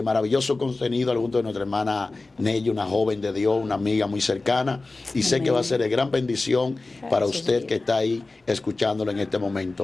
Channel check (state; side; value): quieter; right; 3.4 dB